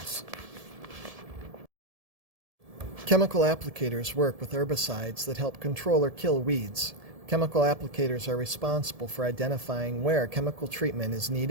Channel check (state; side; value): late; left; 1.7 ms